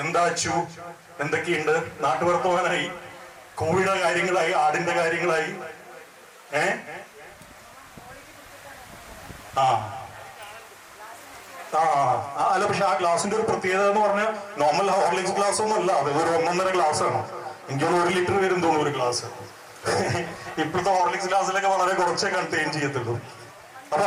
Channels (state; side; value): identical; both; correlation 1.00